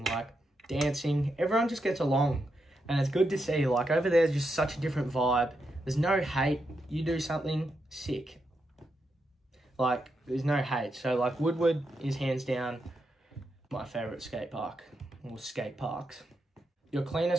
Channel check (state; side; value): normal; both; correlation 0.84